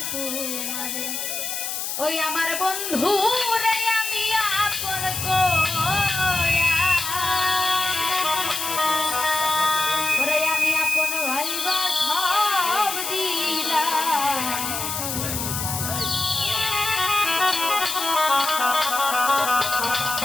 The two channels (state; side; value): noise; left; hiss, 4 dB below the sound